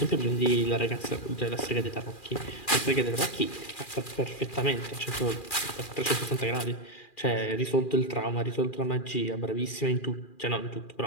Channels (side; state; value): right; late; 2.4 ms